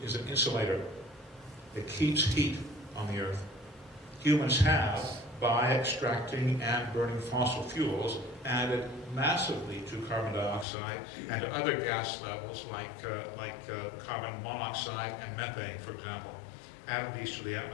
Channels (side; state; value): right; drops out; at 10.7 s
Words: is an insulator. It keeps heat on the earth. Humans have, by extracting and burning fossil fuels, added massively to carbon dioxide and to other gas levels like carbon monoxide and methane, for example, added these to the